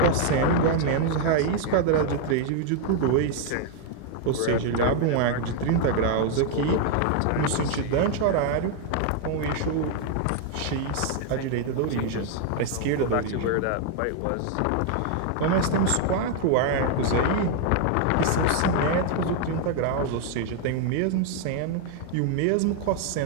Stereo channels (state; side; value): different; both; correlation 0.00